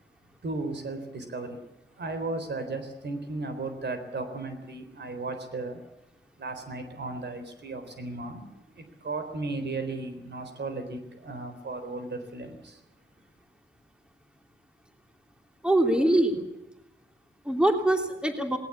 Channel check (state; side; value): normal; both; correlation 0.70